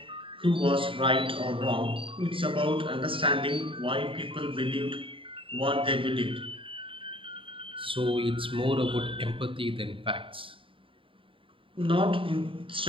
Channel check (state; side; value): late; left; 0.25 ms